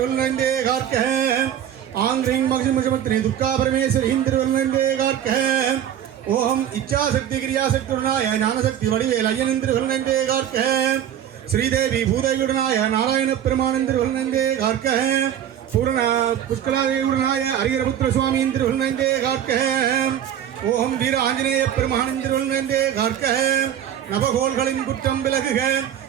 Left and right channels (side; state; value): left; quieter; 10.1 dB